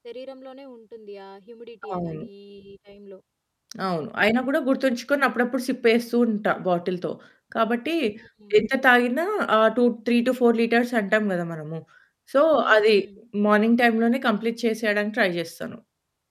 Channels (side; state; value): both; identical; correlation 1.00